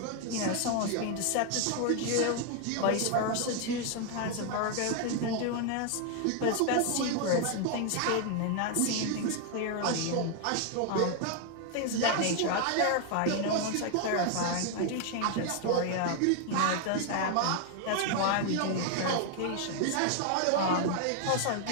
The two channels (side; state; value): both; different; correlation 0.00